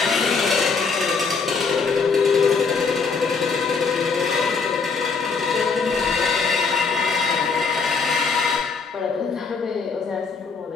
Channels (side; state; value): right; quieter; 5.0 dB